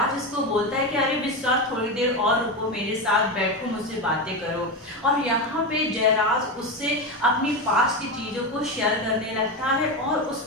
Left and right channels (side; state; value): both; normal; correlation 0.16